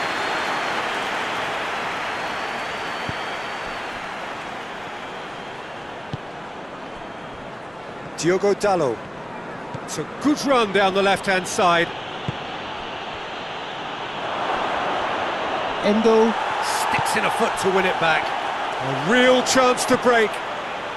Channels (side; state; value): left; noise; rumble, 28 dB below the sound